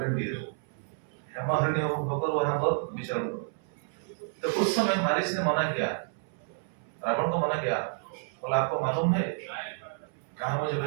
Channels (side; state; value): left; silent; 58 dB below the other